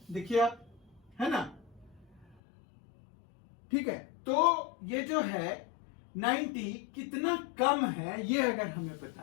देखिए आप, है ना। ठीक है, तो ये जो है 90 कितना कम है, ये अगर हमें पता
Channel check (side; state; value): right; drops out; at 2.4 s